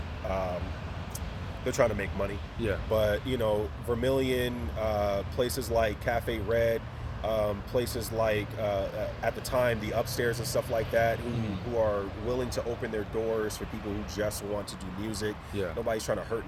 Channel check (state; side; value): identical; both; correlation 1.00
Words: trying to make money. Yeah. But you know, Vermilion, places like Cafe Red. Places like at the time the Upstairs and stuff like that who are willing to open their doors for people who just want to do music. Yeah. Nobody's trying to hurt